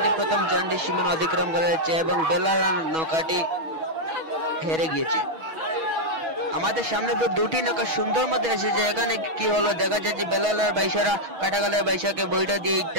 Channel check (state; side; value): late; left; 6.2 ms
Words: প্রথম জানটি সীমানা অতিক্রম করেছে এবং বেলালার নৌকাটি হেরে গিয়েছে। আমাদের সামনে তো দুটি নৌকা সুন্দর মধ্যে এসেছে। এখানে কি হলো দেখা যাচ্ছে বেলালার বাইশারা কাটাকালের বাইশাকে বইটা দিয়ে